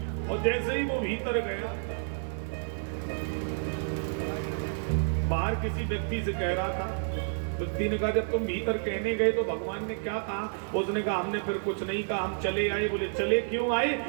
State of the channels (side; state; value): left; silent; digital silence